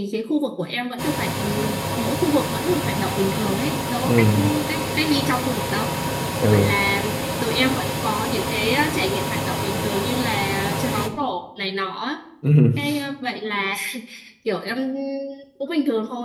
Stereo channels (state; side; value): identical; both; correlation 1.00